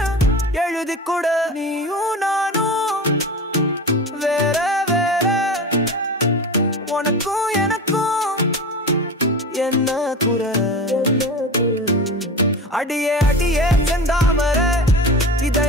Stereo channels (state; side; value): normal; both; correlation 0.30